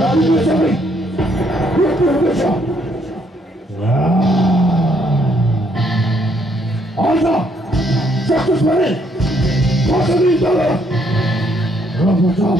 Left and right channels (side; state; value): both; normal; correlation 0.70